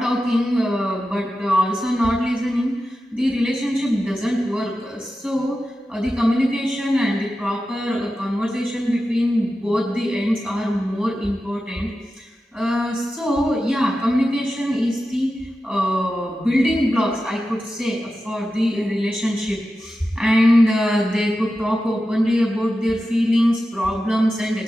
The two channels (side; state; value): both; normal; correlation 0.92